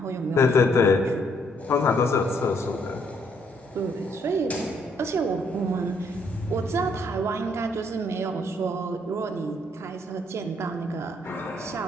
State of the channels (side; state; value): both; normal; correlation 0.69